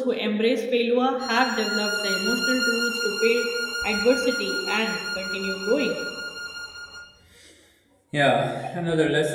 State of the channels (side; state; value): both; identical; correlation 1.00